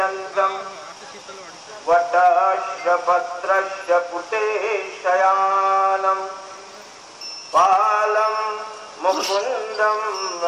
वटस्य पत्रस्य पुटे शयानं बालं मुकुन्दं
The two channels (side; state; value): both; identical; correlation 1.00